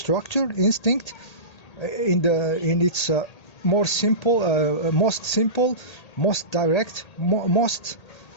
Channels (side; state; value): right; late; 1.8 ms